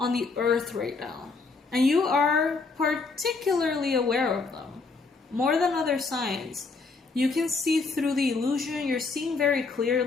the earth right now. And you are particularly aware of them. More than other signs. You can see through the illusion. You're seeing very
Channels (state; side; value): quieter; right; 4.1 dB